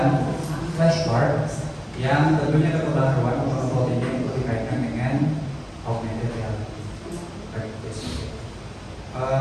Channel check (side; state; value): both; identical; correlation 1.00